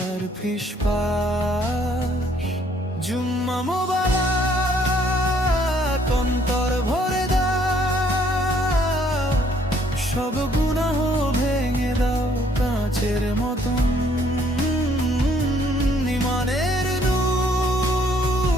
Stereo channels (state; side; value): normal; both; correlation 0.64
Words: ফিসফাস। জুম্মা মোবারক, অন্তর ভরে দাও, সব গুনাহ ভেঙে দাও কাঁচের মতন। ইমানের